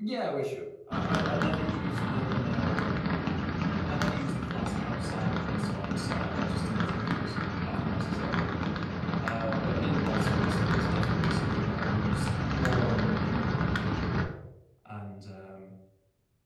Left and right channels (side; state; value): both; identical; correlation 1.00